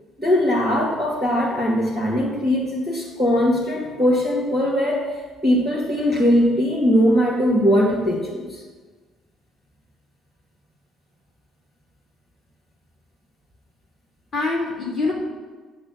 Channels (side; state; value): both; normal; correlation 0.72